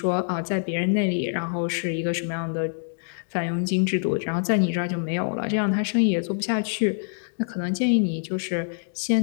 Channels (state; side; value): silent; right; digital silence